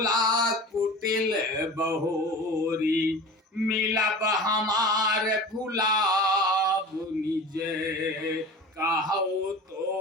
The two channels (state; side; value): normal; both; correlation 0.36